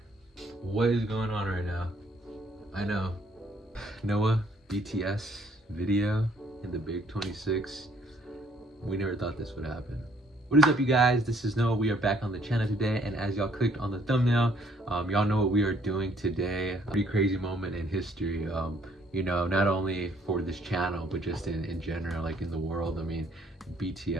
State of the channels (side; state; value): both; normal; correlation 0.64